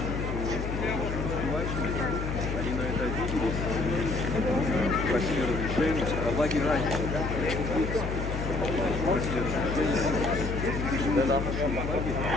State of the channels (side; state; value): left; noise; hum, 3 dB below the sound